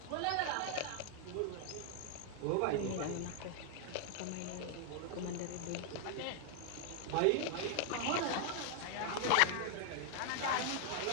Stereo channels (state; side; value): different; both; correlation 0.00